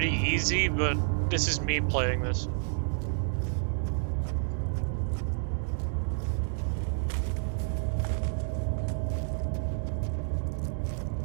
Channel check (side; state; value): left; silent; digital silence